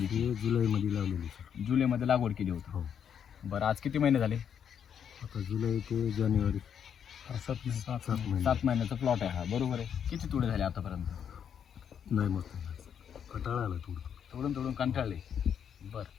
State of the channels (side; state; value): right; quieter; 8.2 dB